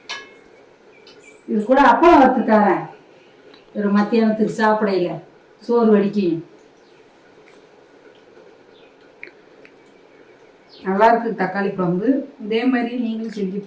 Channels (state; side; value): identical; both; correlation 1.00